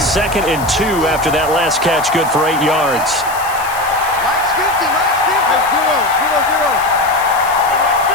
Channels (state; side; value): noise; left; hiss, 14 dB below the sound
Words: and 2 after that last catch, good for 8 yards.